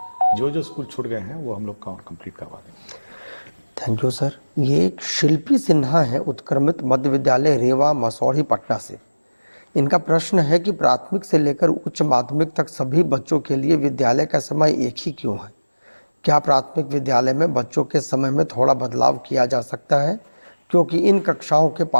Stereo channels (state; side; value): inverted; both; correlation -1.00